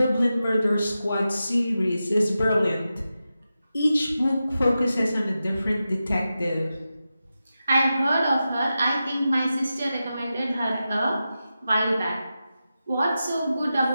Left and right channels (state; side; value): inverted; both; correlation -0.91